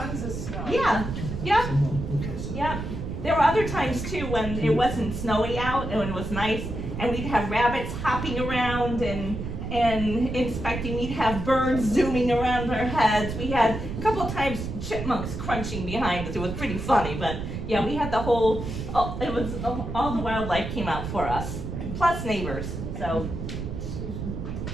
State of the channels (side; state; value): right; noise; rumble, 6 dB below the sound